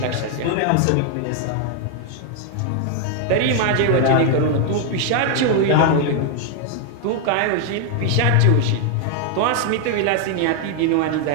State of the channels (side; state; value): both; different; correlation 0.00